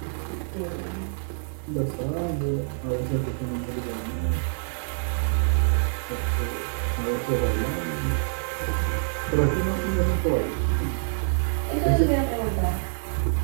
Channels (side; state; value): left; silent; digital silence